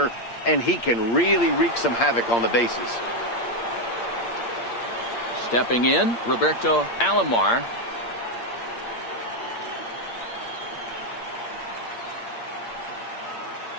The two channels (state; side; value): late; right; 8.6 ms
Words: and he can really wreak some havoc on the bases. Stepping in, Roberto Alomar.